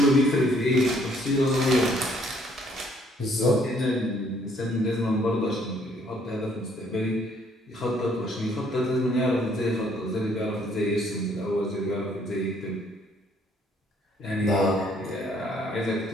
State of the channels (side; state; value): both; normal; correlation 0.65